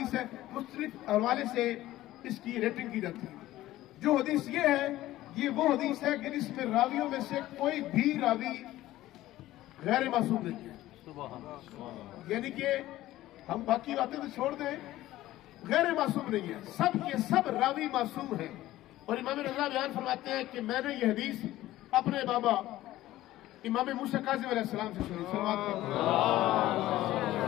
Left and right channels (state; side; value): quieter; right; 15.5 dB